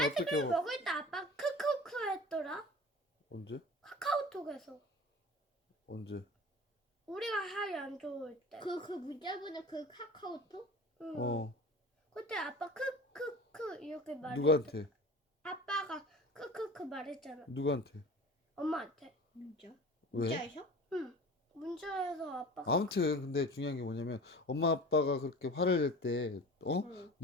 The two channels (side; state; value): both; normal; correlation 0.38